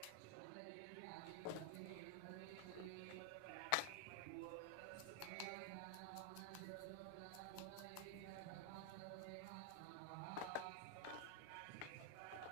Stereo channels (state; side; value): different; both; correlation 0.00